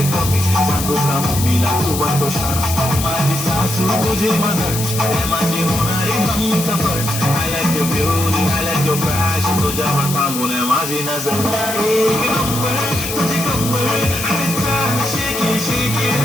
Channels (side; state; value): left; noise; hiss, 5 dB below the sound